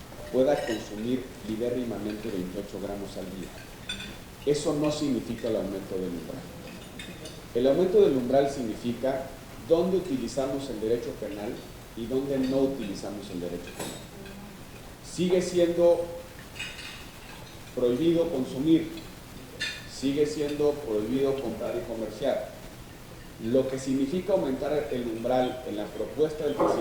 pueda consumir libérrimamente 28 gramos al día. Eso no significa el aumento del umbral. El aumento del umbral significa dónde utilizamos el derecho penal y dónde no utilizamos el derecho penal. Sigue siendo prohibido consumir, sigue siendo prohibido comprar y comerciar. Lo que significa aumentar el umbral en la propuesta del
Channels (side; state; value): both; identical; correlation 1.00